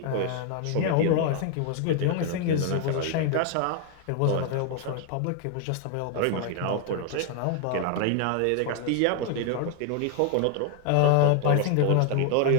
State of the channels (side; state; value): both; different; correlation 0.00